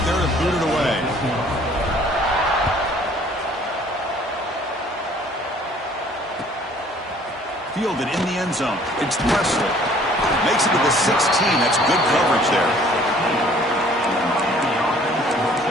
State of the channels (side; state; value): both; normal; correlation 0.56